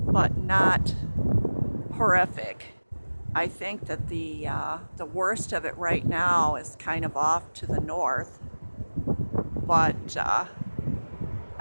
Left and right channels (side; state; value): both; inverted; correlation -1.00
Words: not horrific. I think that the worst of it right now is kind of off to the north, but